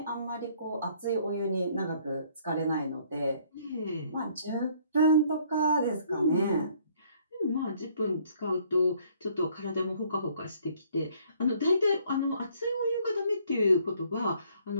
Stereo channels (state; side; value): inverted; both; correlation -0.62